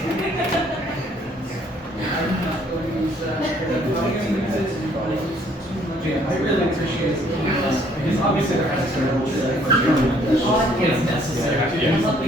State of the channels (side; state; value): both; normal; correlation 0.63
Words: Yeah, I really appreciate it. Because obviously there has to be rules it's necessary to do